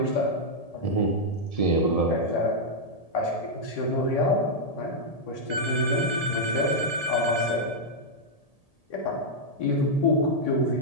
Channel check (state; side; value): late; right; 1.7 ms